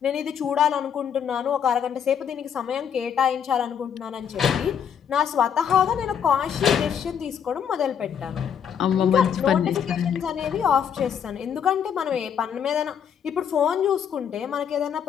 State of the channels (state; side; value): quieter; right; 8.1 dB